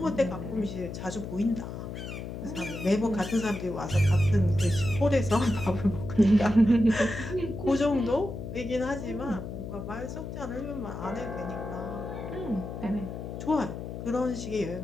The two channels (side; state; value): left; noise; hum, 8 dB below the sound